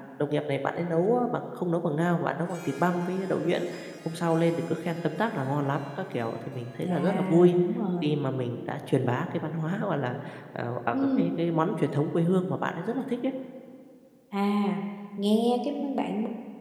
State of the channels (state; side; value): identical; both; correlation 1.00